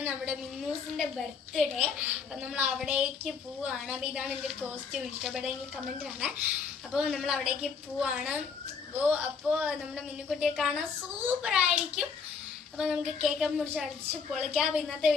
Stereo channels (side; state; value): right; quieter; 5.6 dB